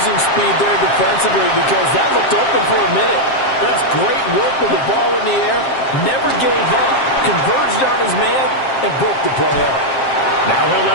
speed there defensively because that looked open for a minute. That's great work with the ball in the air. Never gave up, converged on his man, and broke the play up. Now he'll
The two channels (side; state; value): right; late; 7.5 ms